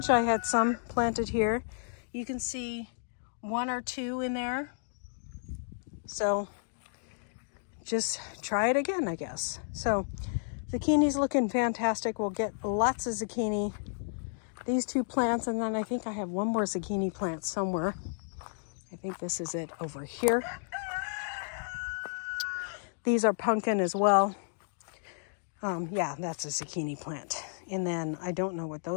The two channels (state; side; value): silent; right; digital silence